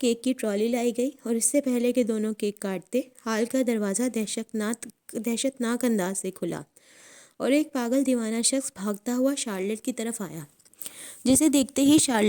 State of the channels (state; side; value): identical; both; correlation 1.00